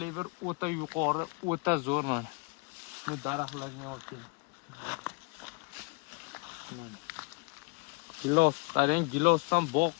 o'ta yuqori, o'ta zo'r mana. Bu daraxtlarga olib keling. Gilos, qarang, gilosdan bog'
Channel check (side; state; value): right; quieter; 31.1 dB